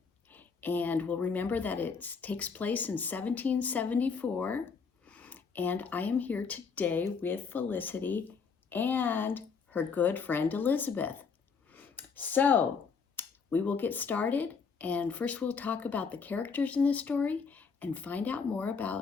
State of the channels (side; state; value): right; quieter; 5.5 dB